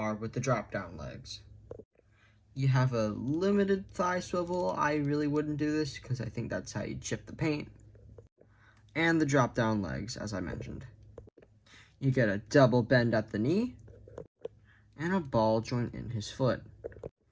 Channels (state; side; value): identical; both; correlation 1.00